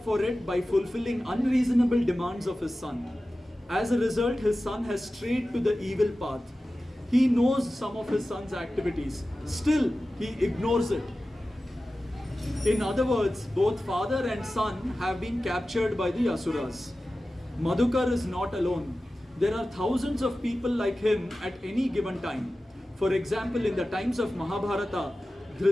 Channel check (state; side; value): normal; both; correlation 0.95